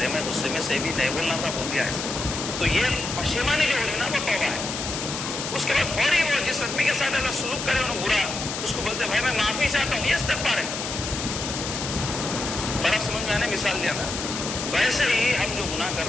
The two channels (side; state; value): left; noise; hiss, 5 dB below the sound